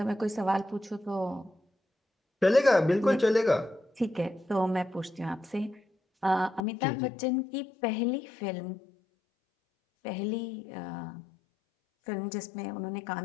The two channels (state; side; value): drops out; right; at 6.7 s